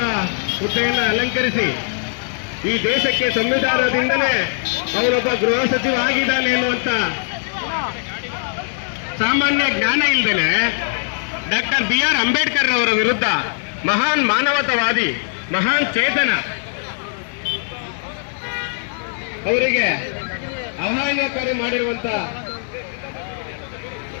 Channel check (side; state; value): right; silent; 62 dB below the other